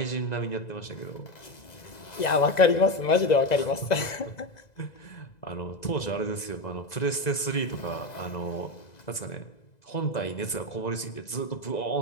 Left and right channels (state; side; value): late; right; 2.0 ms